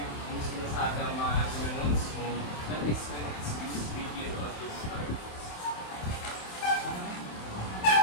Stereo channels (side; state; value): right; late; 27 ms